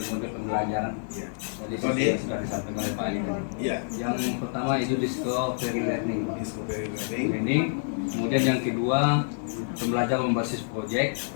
pembelajaran. Ya. Jadi seperti yang sudah disampaikan oleh Pak Ali tadi. Ya. Yang pertama itu discovery learning. Discovery learning. Learning. Kemudian yang kedua pembelajaran berbasis proyek.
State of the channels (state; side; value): silent; right; digital silence